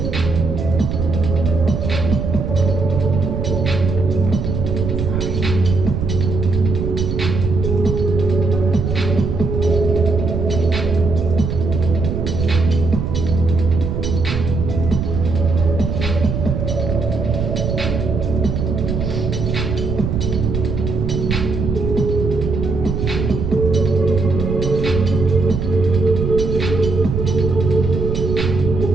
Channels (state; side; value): noise; right; rumble, 2 dB below the sound